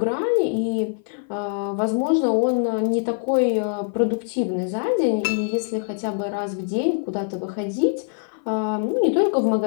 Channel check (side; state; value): right; silent; 57 dB below the other